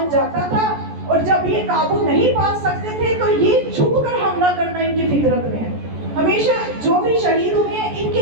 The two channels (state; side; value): late; left; 14 ms